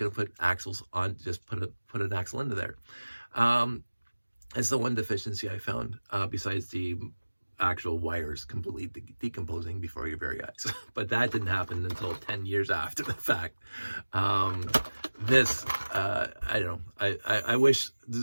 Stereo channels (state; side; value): inverted; both; correlation -1.00